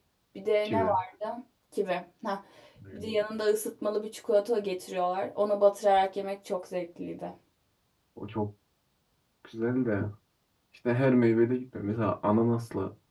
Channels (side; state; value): both; identical; correlation 1.00